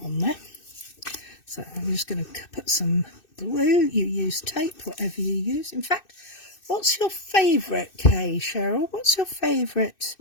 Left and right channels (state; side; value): late; right; 2.6 ms